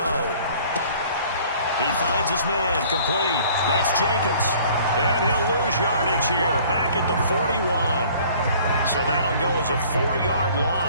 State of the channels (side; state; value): both; inverted; correlation -0.53